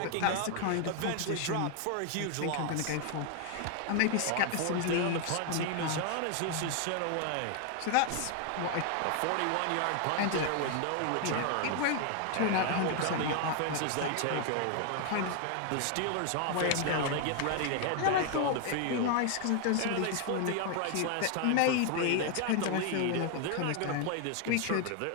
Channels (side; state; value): both; different; correlation 0.00